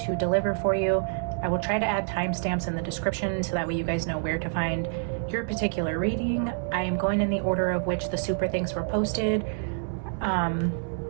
to deliver for you. I will try to add timestamps in the description so that way you guys know where to find your particular reading. I am going in the order of which the super thanks were posted.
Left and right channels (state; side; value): silent; left; digital silence